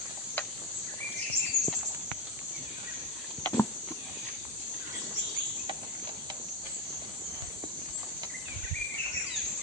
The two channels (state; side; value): normal; both; correlation 0.15